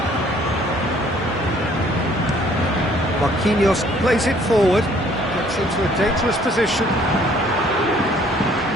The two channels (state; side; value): normal; both; correlation 0.59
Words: Marquinhos plays it forward, gets into a dangerous position.